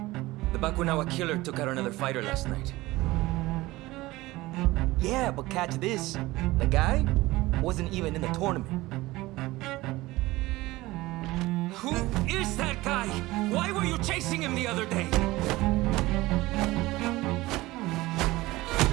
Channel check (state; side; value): quieter; left; 19.2 dB